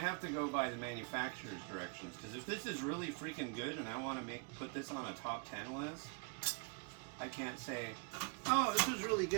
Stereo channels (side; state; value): left; quieter; 35.1 dB